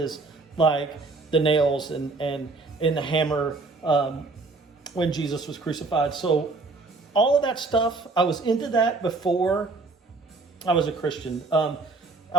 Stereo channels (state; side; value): quieter; left; 3.6 dB